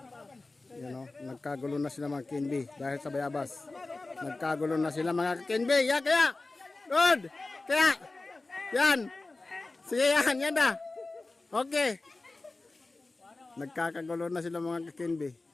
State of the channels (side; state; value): right; quieter; 3.3 dB